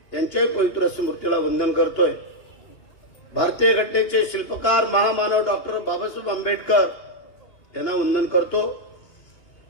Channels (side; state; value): right; late; 2.8 ms